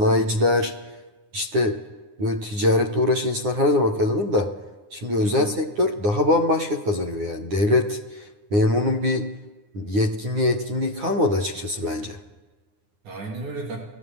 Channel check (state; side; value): late; left; 9.7 ms